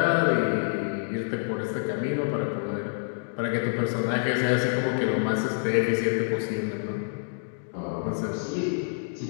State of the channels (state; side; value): silent; right; digital silence